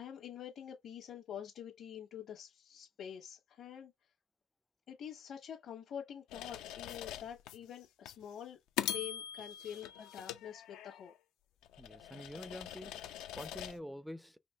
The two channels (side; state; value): right; quieter; 8.5 dB